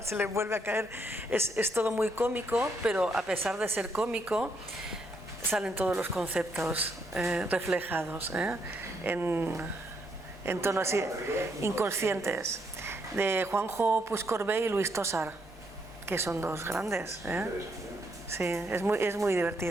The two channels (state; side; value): normal; both; correlation 0.75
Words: se le vuelve a caer. Es todo muy cómico, pero a pesar de ser cómico, salen todos los conceptos reflejados en tono así, inconscientes, de Juanjo Puigcorbé y Luis Tosar, que son dos grandes. Sí, es muy